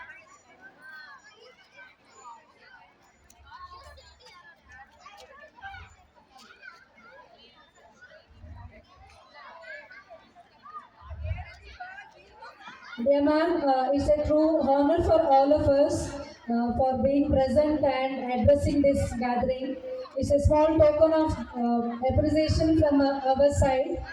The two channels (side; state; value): both; identical; correlation 1.00